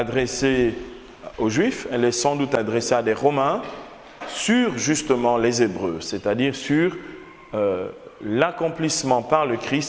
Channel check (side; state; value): both; identical; correlation 1.00